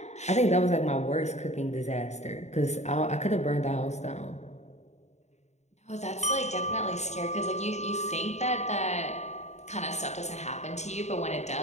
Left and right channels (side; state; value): right; late; 0.33 ms